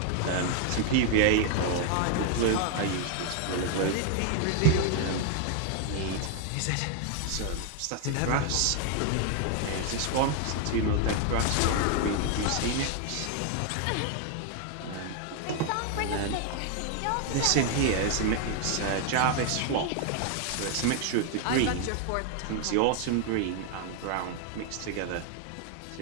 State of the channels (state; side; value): different; both; correlation 0.00